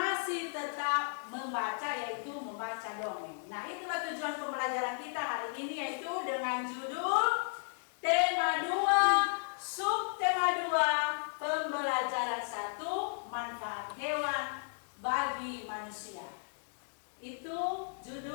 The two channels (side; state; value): right; silent; digital silence